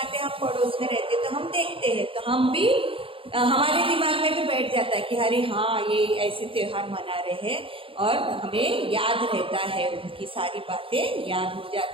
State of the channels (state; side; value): late; left; 0.26 ms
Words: हैं, हम पड़ोस में रहते हैं तो हम देखते हैं, तो हम भी हमारे दिमाग में भी बैठ जाता है कि अरे हाँ, ये ऐसे त्योहार मना रहे हैं, और हमें याद रहता है, उनकी सारी बातें याद हो